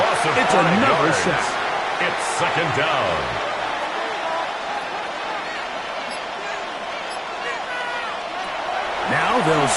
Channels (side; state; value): both; identical; correlation 1.00